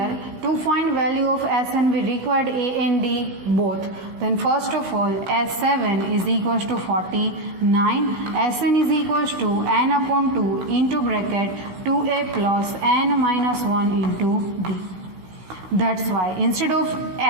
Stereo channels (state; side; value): late; left; 15 ms